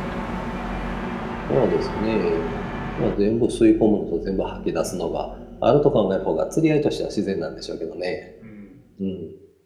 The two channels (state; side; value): identical; both; correlation 1.00